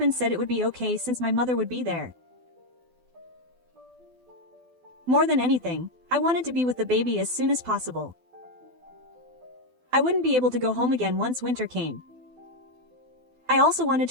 said it would be okay since my mother would be there. More than anything, I wanted to be with the baby as soon as possible. I wouldn't be able to go home again once winter came. I also wanted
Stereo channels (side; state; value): left; late; 12 ms